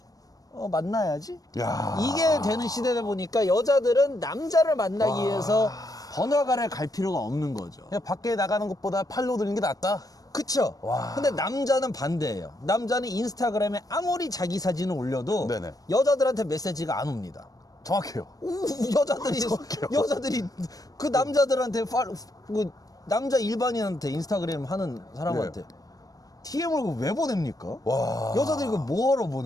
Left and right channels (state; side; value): late; right; 0.18 ms